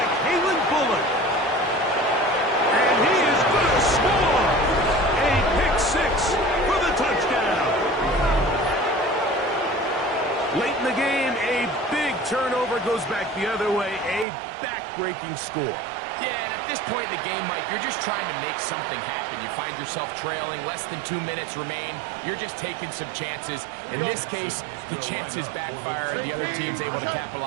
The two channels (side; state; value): left; drops out; at 14.2 s